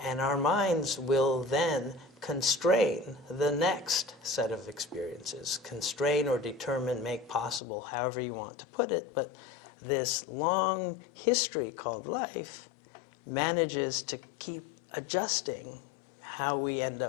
And our minds will then constrain the next set of experiences. Constrain or determine, make possible, however you want to put it. But this long history called life manages to keep adjusting how we end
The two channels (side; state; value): right; drops out; at 7.6 s